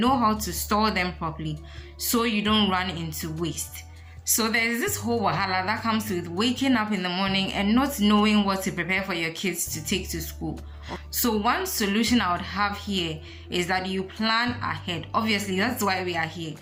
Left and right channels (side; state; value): both; identical; correlation 1.00